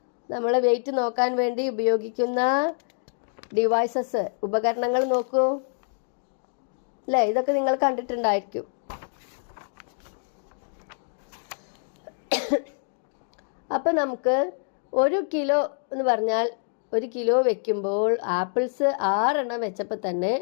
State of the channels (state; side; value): silent; right; digital silence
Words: നമ്മൾ വെയിറ്റ് നോക്കാൻ വേണ്ടി ഉപയോഗിക്കുന്ന ഡിവൈസസ്, ഉപകരണങ്ങൾ നോക്കൂ അല്ലേ? ഇതൊക്കെ നിങ്ങൾ കണ്ടിട്ടുണ്ടായിരിക്കും. അപ്പം നമുക്ക് 1 കിലോ എന്ന് പറഞ്ഞാൽ 1 കിലോ വെക്കുമ്പോൾ ആപ്പിൾസ് 6 എണ്ണം വെച്ചപ്പോൾ തന്നെ